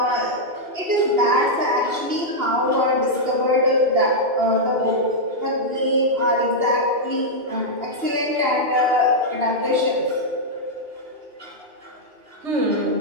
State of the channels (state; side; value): late; left; 2.8 ms